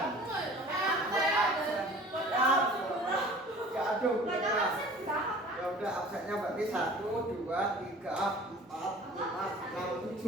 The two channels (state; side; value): normal; both; correlation 0.46